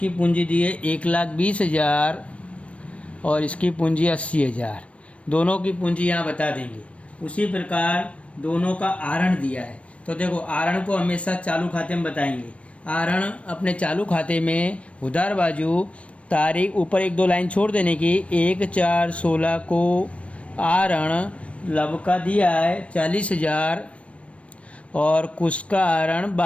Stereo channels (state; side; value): late; right; 0.063 ms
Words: पूंजी दी है 1,20,000 और इसकी पूंजी 80,000। दोनों की पूंजी यहाँ बता देंगे। उसी प्रकार दोनों का आहरण दिया है, तो देखो आहरण को हमेशा चालू खाते में बताएंगे। आहरण अपने चालू खाते में उधार बाजू तारीख ऊपर 1-2 लाइन छोड़ देने की। 1/4/16 को आहरण लव का दिया है 40,000 और कुश का आहरण